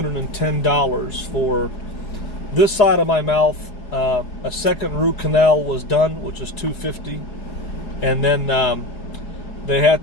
for this side of my mouth. A second root canal was done, which is $250, and then they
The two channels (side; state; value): right; late; 4.8 ms